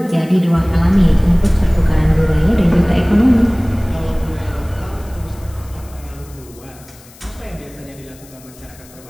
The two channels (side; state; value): left; noise; hiss, 24 dB below the sound